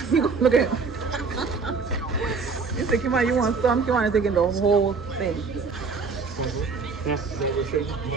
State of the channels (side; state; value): left; quieter; 4.7 dB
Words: He gonna look at him. You say, Kimani, you want some? Kimani taking the whole thing.